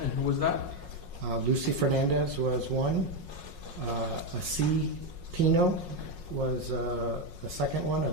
And who was that? Lucy Fernandez was one. A C. Pino was a second one,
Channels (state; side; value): late; left; 5.5 ms